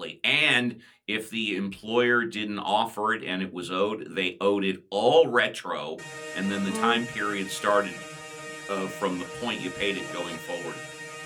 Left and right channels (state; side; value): identical; both; correlation 1.00